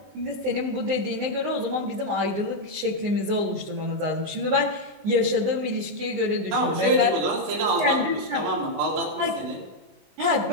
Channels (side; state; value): left; late; 19 ms